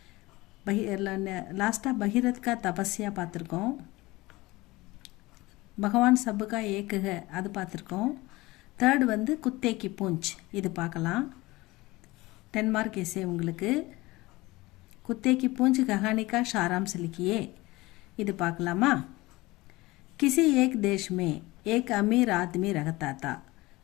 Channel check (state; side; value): quieter; right; 20.7 dB